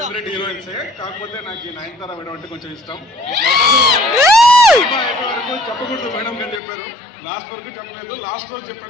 favourite హీరోయిన్సే, కాకపోతే నాకు ఈ నయనతార మేడం అంటే కొంచెం ఇష్టం. వరకు చెప్పకూడదు మేడం అని చెప్పారు, లాస్ట్ వరకు చెప్పలేదు. లాస్ట్ రోజు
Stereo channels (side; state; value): right; drops out; at 6.6 s